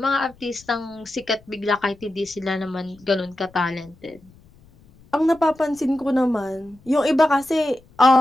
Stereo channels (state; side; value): noise; left; rumble, 27 dB below the sound